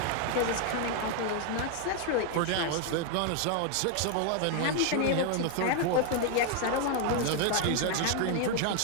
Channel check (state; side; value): different; both; correlation 0.00